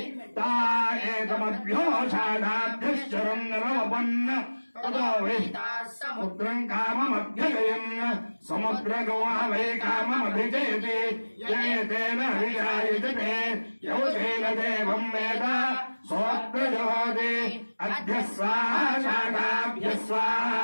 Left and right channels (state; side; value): inverted; both; correlation -1.00